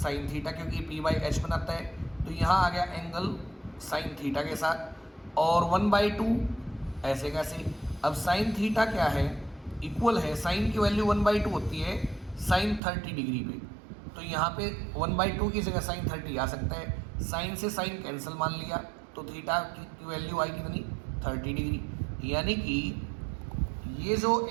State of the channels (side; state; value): left; drops out; at 12.8 s